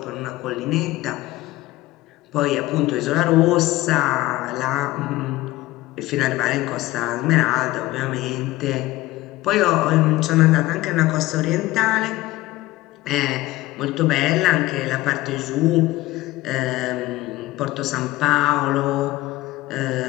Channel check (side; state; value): right; quieter; 17.8 dB